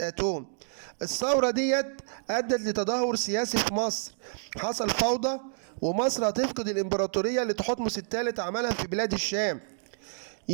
أتون. الثورة ديت أدت لتدهور سياسي في مصر، حصل فوضى، ومصر هتفقد الإمبراطورية اللي تحتمس الثالث عملها في بلاد الشام.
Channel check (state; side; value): silent; left; 59 dB below the other